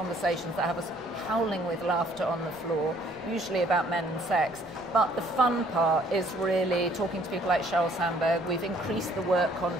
that have us howling with laughter on the floor, usually about men and sex. But the fun part is really talking to people like Sheryl Sandberg. We've increased the work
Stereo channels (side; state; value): both; normal; correlation 0.61